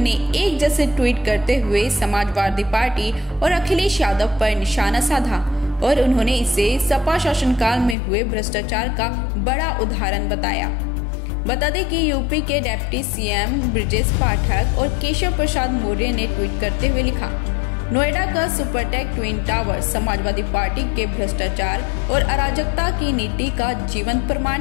एक जैसे ट्वीट करते हुए समाजवादी पार्टी और अखिलेश यादव पर निशाना साधा और उन्होंने इसे सपा शासनकाल में हुए भ्रष्टाचार का बड़ा उदाहरण बताया। बता दें कि यूपी के डिप्टी सीएम ब्रजेश पाठक और केशव प्रसाद मौर्य ने ट्वीट करते हुए लिखा, नोएडा का Supertech twin tower Samajwadi party के भ्रष्टाचार और अराजकता की नीति का जीवंत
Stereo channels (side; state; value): right; drops out; at 8.0 s